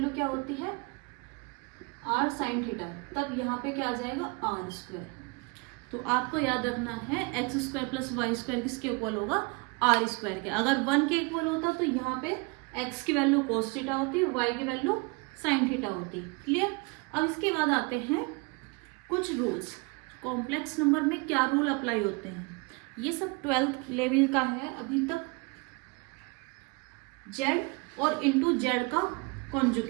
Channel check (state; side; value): quieter; left; 29.1 dB